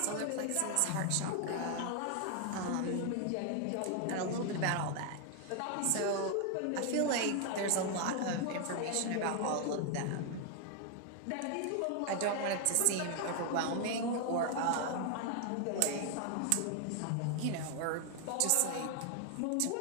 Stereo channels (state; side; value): different; both; correlation 0.00